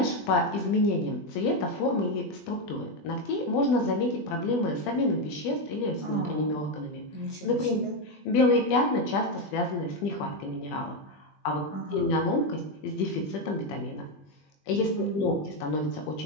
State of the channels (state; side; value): late; right; 20 ms